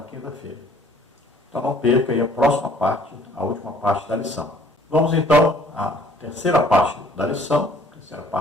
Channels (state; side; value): normal; both; correlation 0.57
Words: quinta-feira. Então não perca aí a próxima parte, a última parte da lição. Vamos então à terceira parte da lição, terceira